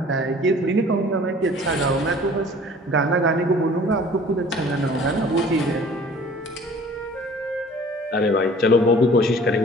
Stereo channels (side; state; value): both; normal; correlation 0.49